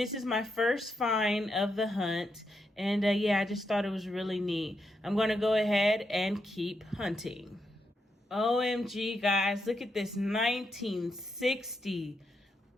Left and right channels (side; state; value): both; normal; correlation 0.82